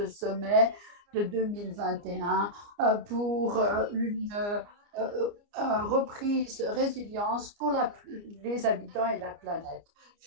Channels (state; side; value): late; left; 29 ms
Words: sommet de 2021 pour une reprise résilience pour les habitants et la planète.